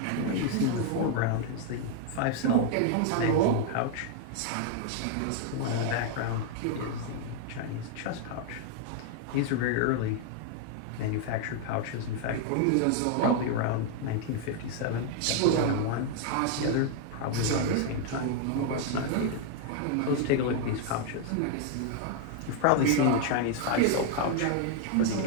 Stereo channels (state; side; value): different; both; correlation 0.00